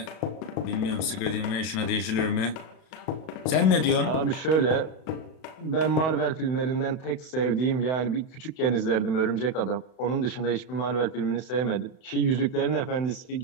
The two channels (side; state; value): right; late; 32 ms